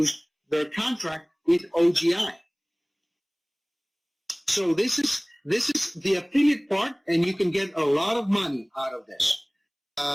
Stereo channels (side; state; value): both; identical; correlation 1.00